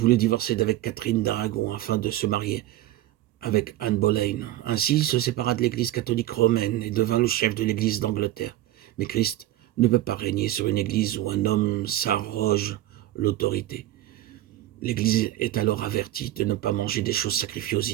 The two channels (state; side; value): quieter; left; 14.7 dB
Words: divorcer d'avec Catherine d'Aragon afin de se marier avec Anne Boleyn. Ainsi, il se sépara de l'église catholique romaine et devint le chef de l'église d'Angleterre. Mais Christ ne peut pas régner sur une église où un homme s'arroge l'autorité. L'église est alors avertie de ne pas manger des choses sacrifiées aux